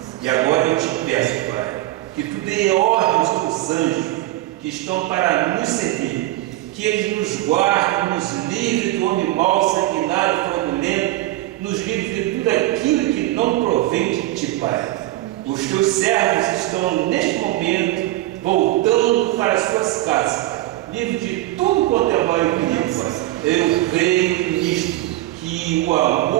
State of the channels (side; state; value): left; quieter; 16.8 dB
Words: E agora eu te peço, Pai, que tu dê ordens aos anjos que estão para nos servir, que eles nos guardem, nos livre do homem mau, sanguinário, fraudulento, nos livre de tudo aquilo que não provém de Ti, Pai. Os Teus servos estão neste momento voltando para as suas casas, livre de tudo quanto é mal e perigo, Pai. Eu creio nisto, que o